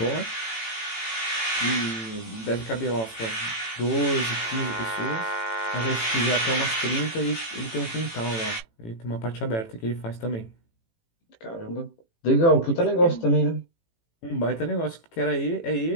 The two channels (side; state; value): right; late; 18 ms